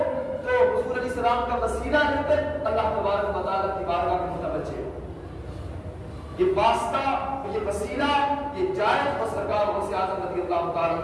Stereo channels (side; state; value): both; identical; correlation 1.00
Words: تو حضور علیہ السلام کا وسیلہ لے کر اللہ تبارک و تعالیٰ کی بارگاہ میں متوجہ ہو۔ یہ واسطہ، یہ وسیلہ، یہ جائز اور سرکار غوث اعظم رضی اللہ تعالیٰ